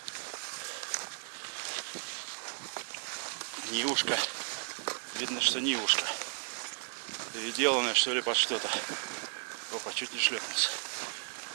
Нивушка. Видно, что Нивушка. Переделанная, что ли, под что-то. Опа, чуть не шлепнулся.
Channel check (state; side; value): silent; left; digital silence